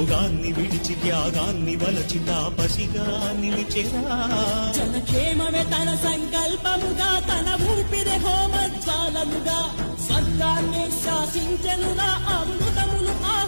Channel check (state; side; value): inverted; both; correlation -1.00